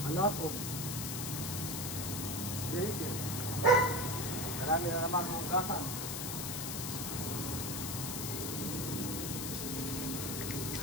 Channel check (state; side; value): noise; left; hiss, 3 dB below the sound